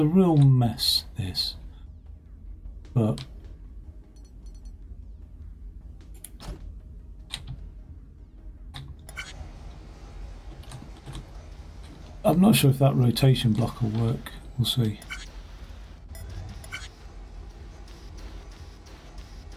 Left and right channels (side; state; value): both; identical; correlation 1.00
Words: real mess, this, but I'm not sure if that rotation block will work. We'll see.